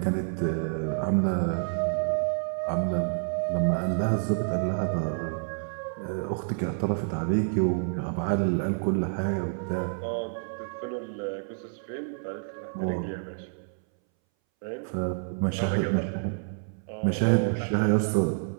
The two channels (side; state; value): left; silent; 59 dB below the other